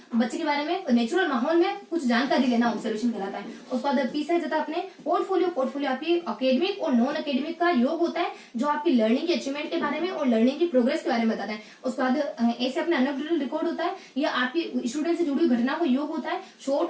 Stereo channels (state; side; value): identical; both; correlation 1.00